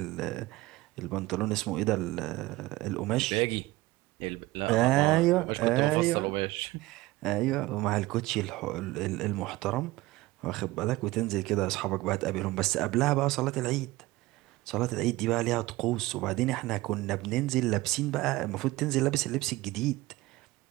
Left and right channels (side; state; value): left; quieter; 19.3 dB